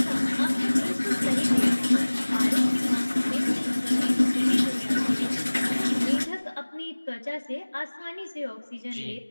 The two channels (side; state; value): both; inverted; correlation -1.00